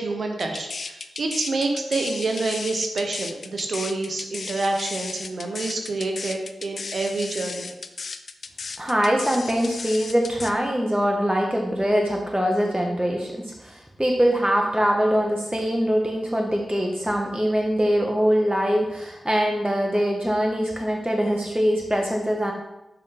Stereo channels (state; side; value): normal; both; correlation 0.95